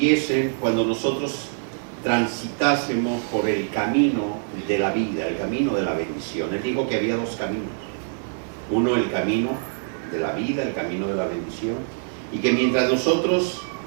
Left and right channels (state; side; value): silent; left; 62 dB below the other